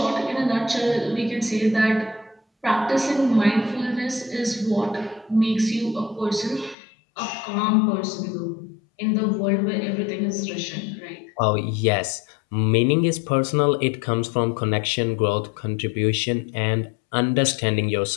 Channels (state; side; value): drops out; right; at 6.8 s